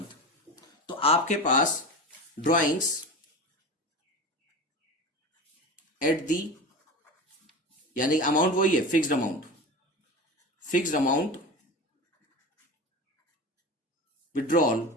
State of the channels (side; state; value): both; normal; correlation 0.28